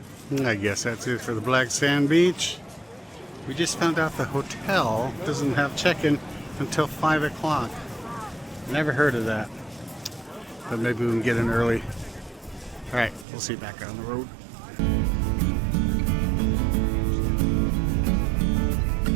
I guess that's it for the Black Sand Beach. We just found out the hotel doesn't have check-in until 5 o'clock. Never heard of that. But maybe we can get in early. Alright, we'll see you back on the road.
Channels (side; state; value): left; drops out; at 13.2 s